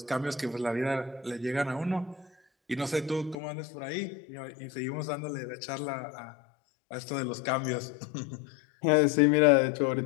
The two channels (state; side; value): drops out; right; at 3.4 s